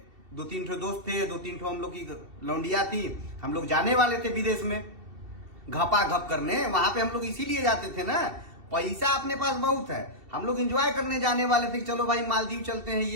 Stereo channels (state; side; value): late; left; 2.7 ms